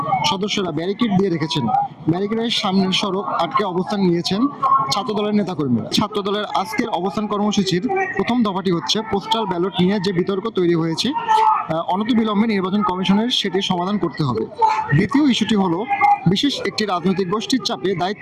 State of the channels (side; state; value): both; identical; correlation 1.00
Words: সদস্যরা ব্যারিকেড দিয়ে রেখেছেন। ব্যারিকেডের সামনের সড়ক আটকে অবস্থান নিয়েছেন ছাত্রদলের নেতাকর্মীরা। ছাত্রদলের আজকের অবস্থান কর্মসূচির প্রথম দফাটি হচ্ছে পোস্টাল ব্যালট নিয়ে যে বিতর্ক তৈরি হয়েছে, অনতিবিলম্বে নির্বাচন কমিশনের সেটি সমাধান করতে হবে। দ্বিতীয় ইস্যুটি হলো বিশেষ একটি রাজনৈতিক গোষ্ঠীর চাপে